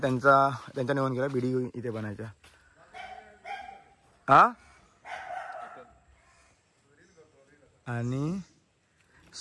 त्यांच्या निवडून गेला बिडी इथे बनायच्या. हा आणि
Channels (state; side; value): identical; both; correlation 1.00